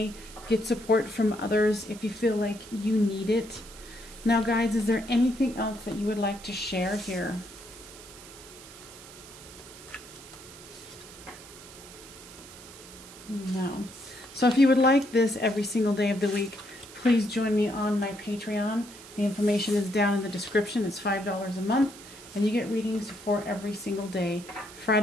get support from others if you feel like you need it. Now guys, is there anything else that you would like to share here? No. So if you would like this every single day of the week, please join me on my Patreon. The information is down in the description. It's $5 a month, and you get readings for every single day.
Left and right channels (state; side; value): noise; right; hiss, 17 dB below the sound